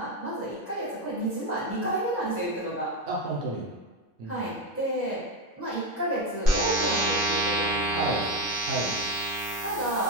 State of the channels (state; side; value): normal; both; correlation 0.11